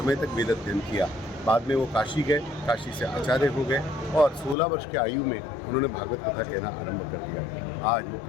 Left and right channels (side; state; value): right; drops out; at 4.5 s